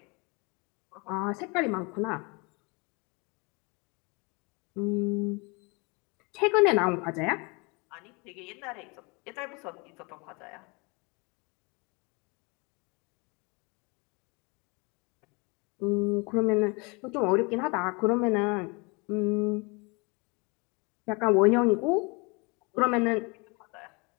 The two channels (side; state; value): right; quieter; 29.6 dB